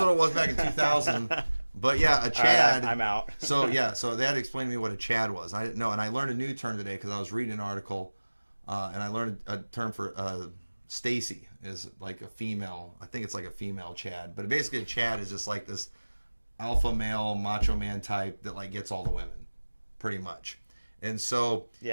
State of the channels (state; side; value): inverted; both; correlation -1.00